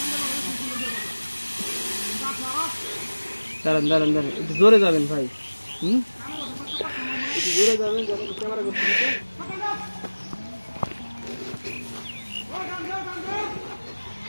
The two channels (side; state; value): both; inverted; correlation -1.00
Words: দাঁড়ান দাঁড়ান দাঁড়ান, একটু জোরে যাবেন ভাই। একটু জোরে যাবেন, যখন ক্যামেরা করতে দিতে।